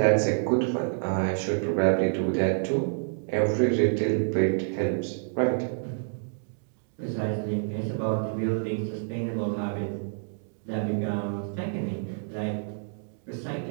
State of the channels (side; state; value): left; silent; digital silence